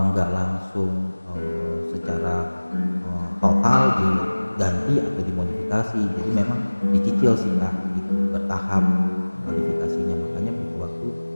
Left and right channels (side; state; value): both; inverted; correlation -1.00